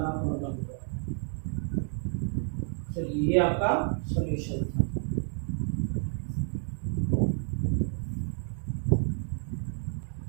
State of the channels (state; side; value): silent; left; 58 dB below the other